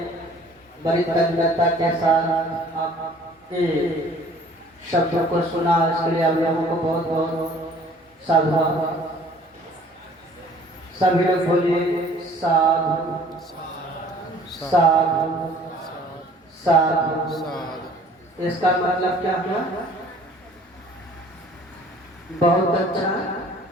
बड़ी तन्मयता के साथ आपके शब्दों को सुना, इसके लिए आप लोगों को बहुत बहुत साधुवाद। सभी लोग बोलिए साधु साधु साधु। इसका मतलब क्या हुआ? बहुत अच्छा,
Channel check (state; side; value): normal; both; correlation 0.53